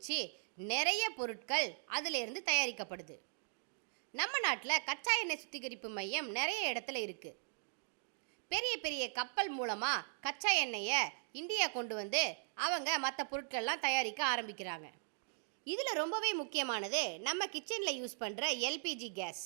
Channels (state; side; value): silent; left; digital silence